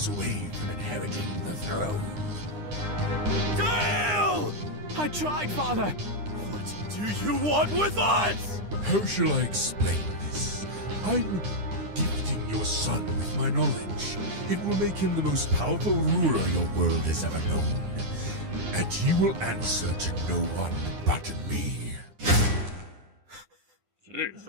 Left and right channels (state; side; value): late; left; 9.8 ms